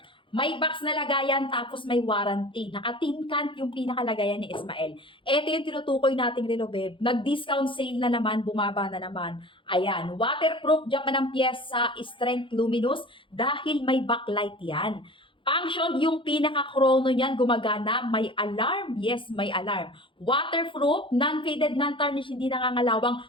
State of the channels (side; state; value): right; late; 0.25 ms